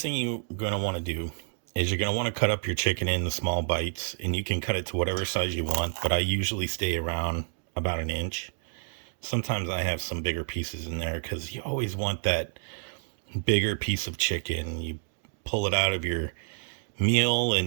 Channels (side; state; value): left; silent; digital silence